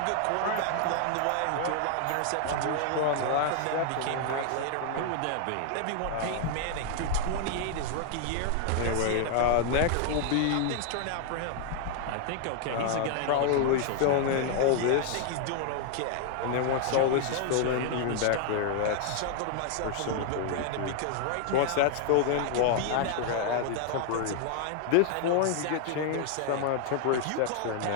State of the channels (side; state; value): both; different; correlation 0.00